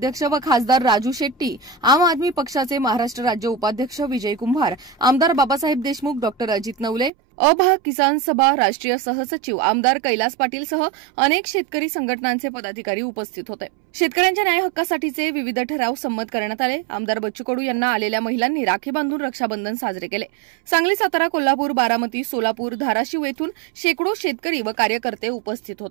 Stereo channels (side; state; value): left; drops out; at 7.1 s